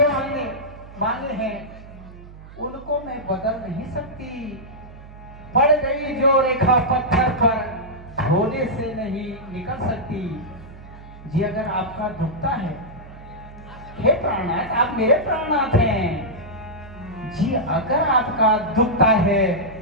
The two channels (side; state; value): right; noise; hum, 17 dB below the sound